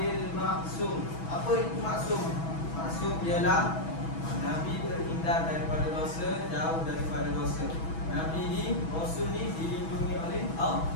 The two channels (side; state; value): right; late; 6.1 ms